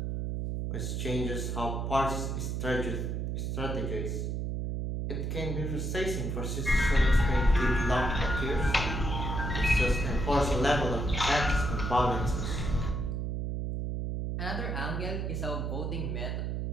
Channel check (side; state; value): right; noise; hum, 2 dB below the sound